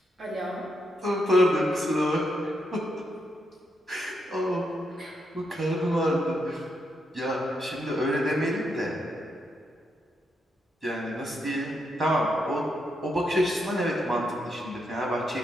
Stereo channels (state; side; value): normal; both; correlation 0.81